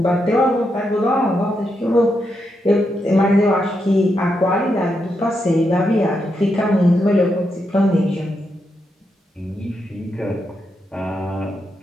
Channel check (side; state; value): both; normal; correlation 0.83